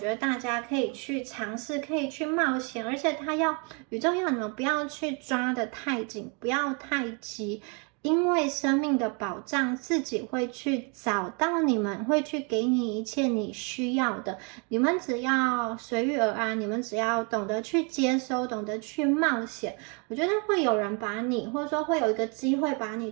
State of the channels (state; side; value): quieter; left; 34.7 dB